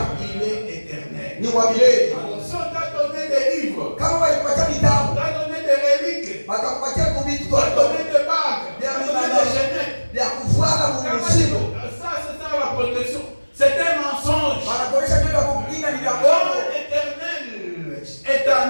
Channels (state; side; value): inverted; both; correlation -1.00